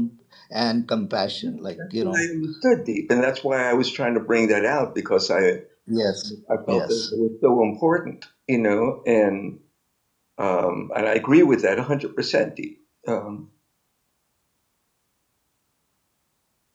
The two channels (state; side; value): identical; both; correlation 1.00